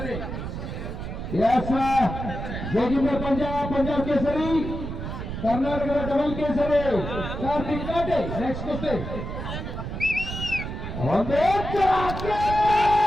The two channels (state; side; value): noise; right; rumble, 6 dB below the sound